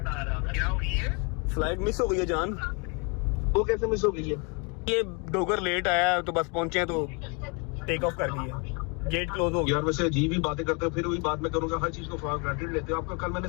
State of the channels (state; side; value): quieter; right; 33.2 dB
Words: हुई है? फ्लाइट मिस हो गई है जान। वो कैसे मिस हो गई है? ये डोगर लेट आया तो बस पहुंचे हैं तो टेक ऑफ कर दिए, गेट क्लोज हो गया। यार वैसे अजीब ही बातें करते हो, फिर वही बात मैं करूंगा, हर चीज को फॉर ग्रांटेड लेते हो। आपको कल मैंने